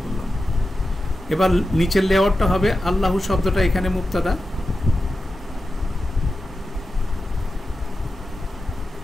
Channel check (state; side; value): normal; both; correlation 0.91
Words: করলাম। এবার নিচের লেআউটটা হবে আল্লাহু শব্দটা এখানে মুক্তাদা,